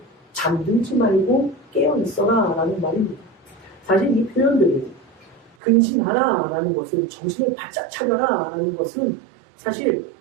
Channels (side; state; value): left; drops out; at 5.6 s